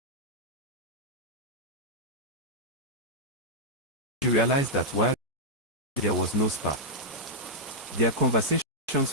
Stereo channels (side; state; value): both; normal; correlation -0.07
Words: She realized that while there was no spark, their conversations